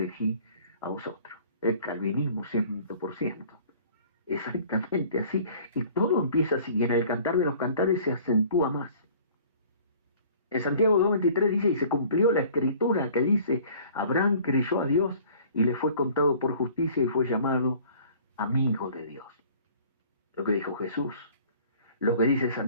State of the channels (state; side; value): inverted; both; correlation -0.51